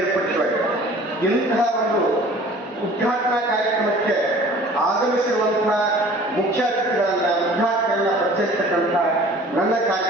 ಇಂತಹ ಒಂದು ಉದ್ಘಾಟನಾ ಕಾರ್ಯಕ್ರಮಕ್ಕೆ ಆಗಮಿಸಿರುವಂತಹ ಮುಖ್ಯ ಅತಿಥಿಗಳನ್ನ ಉದ್ಘಾಟನೆಯನ್ನ ಪರಿಚಯಿಸತಕ್ಕಂಥ ನನ್ನ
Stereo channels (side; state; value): both; normal; correlation 0.47